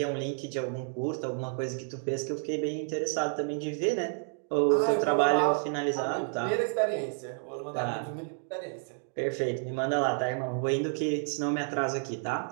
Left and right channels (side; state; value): left; silent; 58 dB below the other